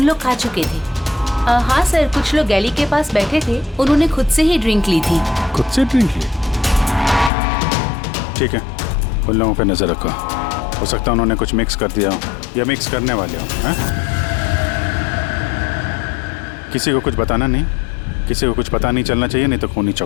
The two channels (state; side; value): drops out; right; at 7.3 s